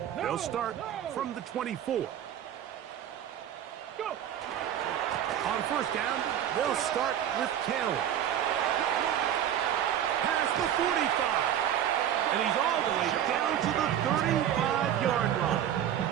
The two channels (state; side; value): quieter; left; 10.4 dB